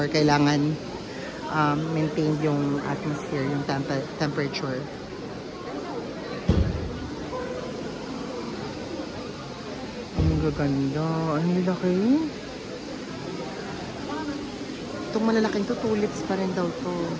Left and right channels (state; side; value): identical; both; correlation 1.00